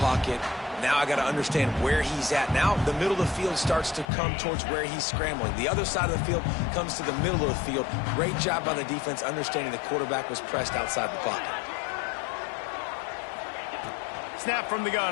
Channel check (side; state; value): right; drops out; at 4.0 s